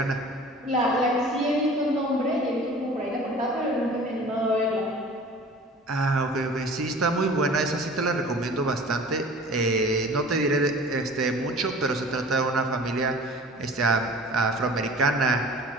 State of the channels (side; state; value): both; normal; correlation 0.44